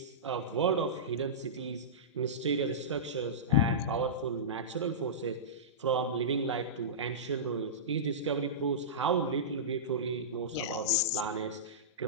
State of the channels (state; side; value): normal; both; correlation -0.18